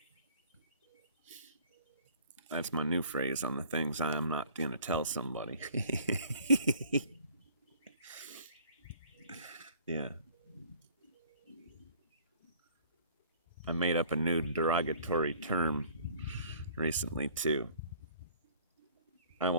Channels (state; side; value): inverted; both; correlation -0.53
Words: That's my new phrase on the things I'm not going to tell somebody. Yeah. I made up a new derogatory term recently, too. I